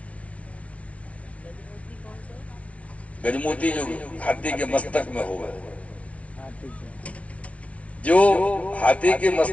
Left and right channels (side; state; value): right; late; 0.064 ms